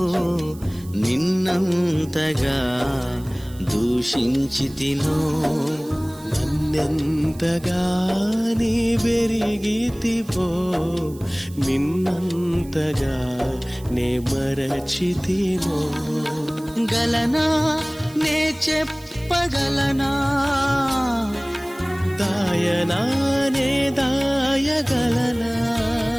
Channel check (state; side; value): noise; right; hiss, 22 dB below the sound